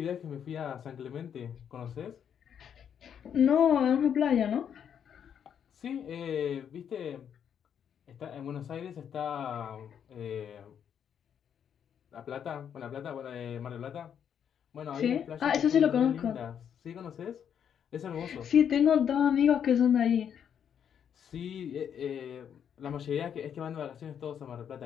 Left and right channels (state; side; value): quieter; right; 8.4 dB